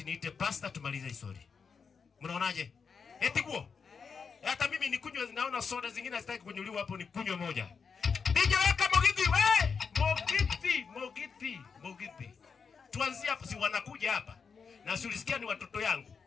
niite pastor tumalize story. Mnaonaje? Eti guo. Hata mimi nikunywe, naona soda zingine sitaki kunyuliwa hapo, nikunywe moja. DJ weka Mogiti, Mogiti. Tuanzie hapo, si wanakuja hapa. Na si ulisikia ni watoto yangu.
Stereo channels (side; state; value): right; quieter; 5.7 dB